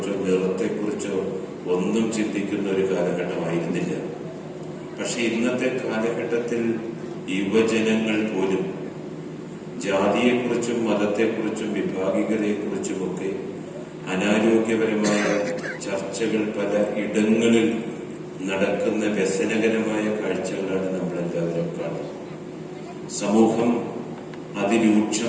നിറത്തെക്കുറിച്ചോ ഒന്നും ചിന്തിക്കുന്ന ഒരു കാലഘട്ടമായിരുന്നില്ല. പക്ഷെ ഇന്നത്തെ കാലഘട്ടത്തിൽ യുവജനങ്ങൾ പോലും ജാതിയെക്കുറിച്ചും മതത്തെക്കുറിച്ചും വിഭാഗികതയെക്കുറിച്ചുമൊക്കെ അനാരോഗ്യപരമായ ചർച്ചകൾ പല ഇടങ്ങളിൽ നടക്കുന്ന വ്യസനകരമായ കാഴ്ചകളാണ് നമ്മളെല്ലാവരും കാണുന്നത്. സമൂഹം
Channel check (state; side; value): identical; both; correlation 1.00